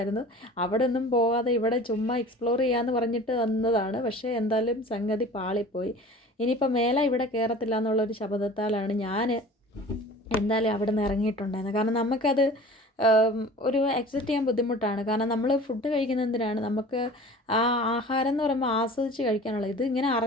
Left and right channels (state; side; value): normal; both; correlation 0.42